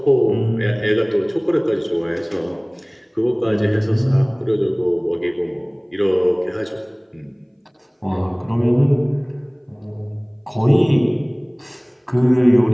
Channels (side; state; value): both; identical; correlation 1.00